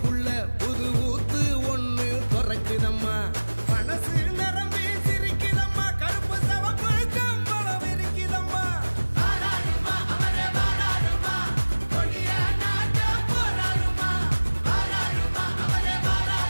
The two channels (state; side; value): inverted; both; correlation -1.00